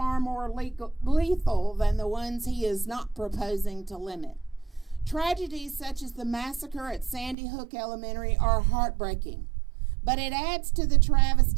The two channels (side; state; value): left; drops out; at 7.4 s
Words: more lethal than the ones he is not proposing to limit. Tragedies such as the massacre at Sandy Hook Elementary are heartbreaking, but it adds to the